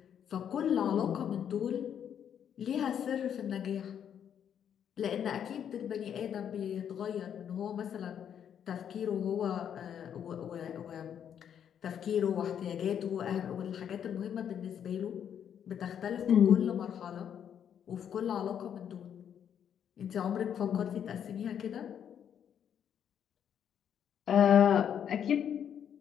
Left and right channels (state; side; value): quieter; right; 8.8 dB